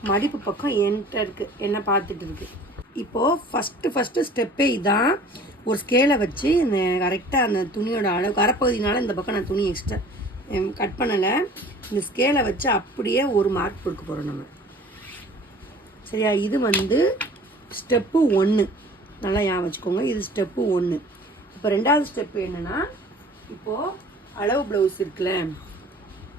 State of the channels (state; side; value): normal; both; correlation 0.47